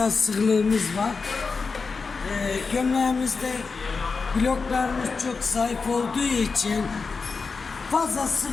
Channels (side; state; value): right; quieter; 4.7 dB